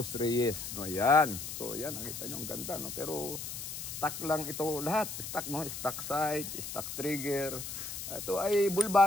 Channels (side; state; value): left; noise; hiss, 7 dB below the sound